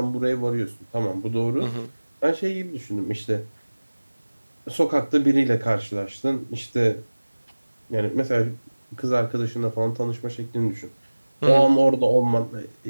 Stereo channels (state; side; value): inverted; both; correlation -1.00